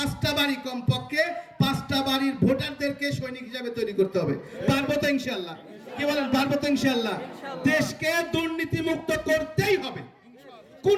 বাড়ি, কমপক্ষে 5টা বাড়ির ভোটারদেরকে সৈনিক হিসাবে তৈরি করতে হবে। পারবো তো ইনশাআল্লাহ? কি বলেন, পারবো তো ইনশাআল্লাহ? দেশকে দুর্নীতি মুক্ত করতেই হবে,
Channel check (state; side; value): identical; both; correlation 1.00